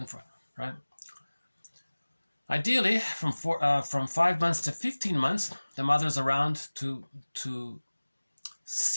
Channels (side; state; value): both; inverted; correlation -1.00